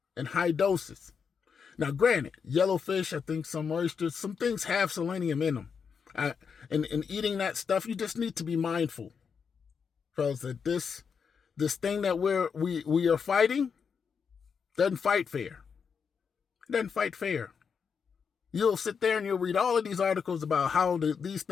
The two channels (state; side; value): quieter; right; 6.3 dB